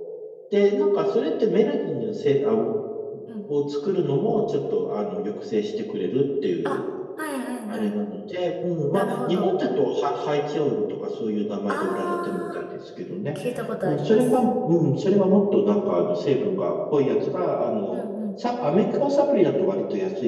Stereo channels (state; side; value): identical; both; correlation 1.00